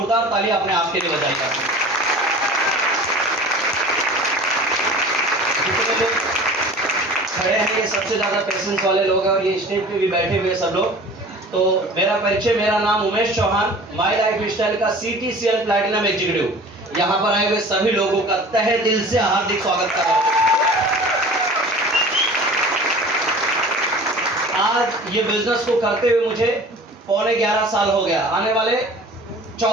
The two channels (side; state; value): both; normal; correlation 0.42